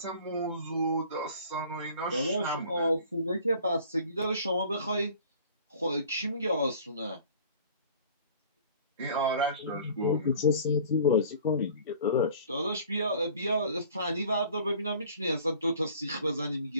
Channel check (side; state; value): both; inverted; correlation -0.48